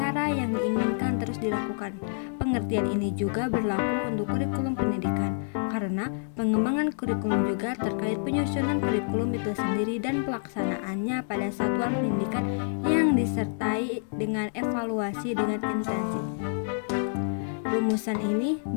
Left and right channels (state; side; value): silent; right; digital silence